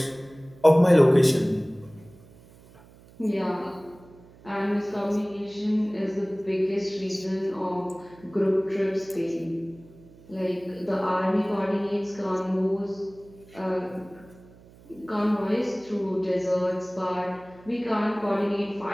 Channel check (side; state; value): right; noise; hum, 24 dB below the sound